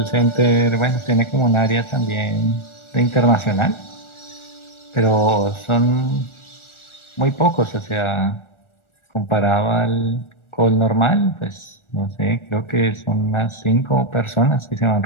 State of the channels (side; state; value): right; late; 1.4 ms